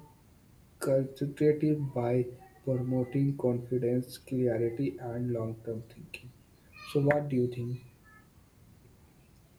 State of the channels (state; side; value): identical; both; correlation 1.00